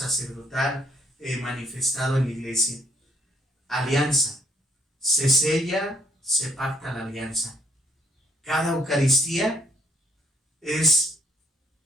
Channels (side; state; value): both; normal; correlation 0.67